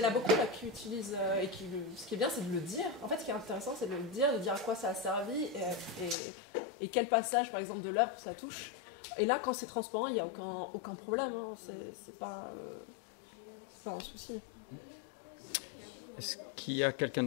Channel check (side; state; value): right; drops out; at 6.2 s